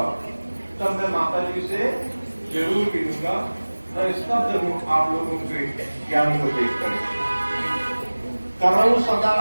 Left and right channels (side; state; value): both; inverted; correlation -1.00